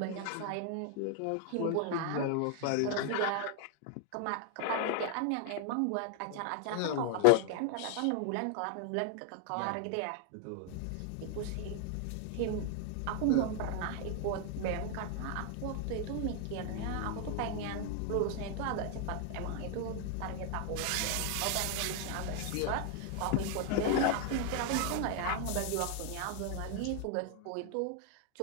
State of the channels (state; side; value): different; both; correlation 0.00